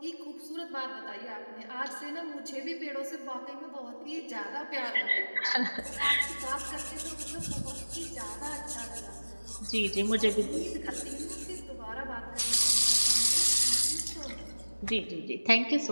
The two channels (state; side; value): inverted; both; correlation -1.00